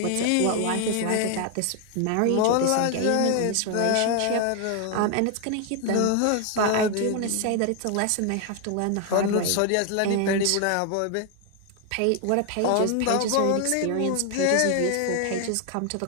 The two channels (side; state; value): both; different; correlation 0.00